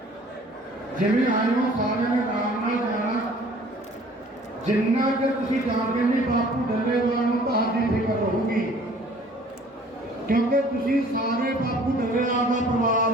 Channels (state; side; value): normal; both; correlation 0.53